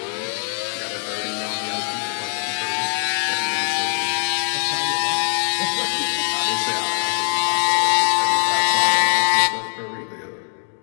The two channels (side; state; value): right; silent; digital silence